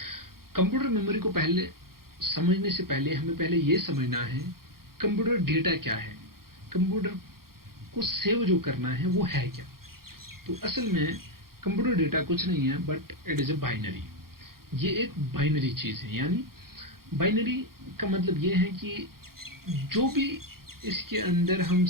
कंप्यूटर मेमोरी को पहले समझने से पहले हमें पहले ये समझना है कंप्यूटर डेटा क्या है, कंप्यूटर को सेव जो करना है वो है क्या। तो असल में कंप्यूटर डेटा कुछ नहीं है, but it is a binary. ये एक बाइनरी चीज है। यानी बाइनरी का मतलब ये है कि जो भी इसके अंदर हम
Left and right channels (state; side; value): late; left; 0.92 ms